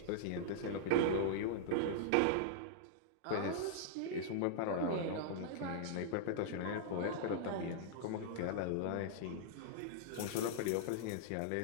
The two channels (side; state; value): both; different; correlation -0.02